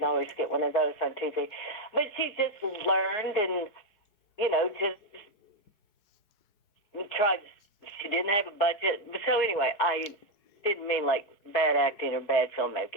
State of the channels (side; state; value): right; late; 4.7 ms